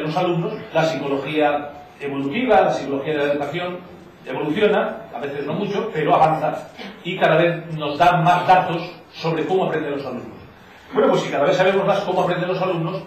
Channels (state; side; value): identical; both; correlation 1.00